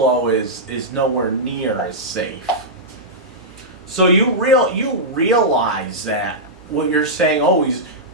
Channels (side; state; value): both; normal; correlation -0.11